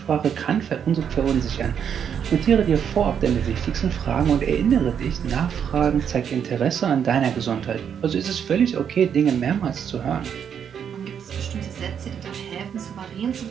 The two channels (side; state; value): left; quieter; 8.0 dB